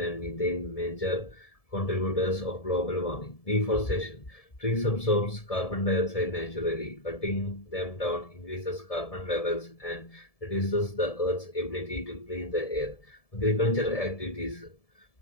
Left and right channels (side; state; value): right; late; 1.7 ms